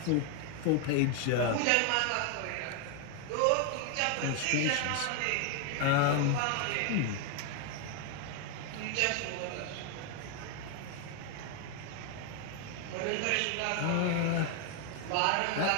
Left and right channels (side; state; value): both; different; correlation 0.01